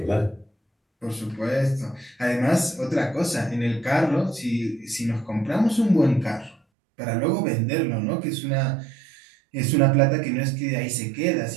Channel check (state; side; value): drops out; left; at 6.6 s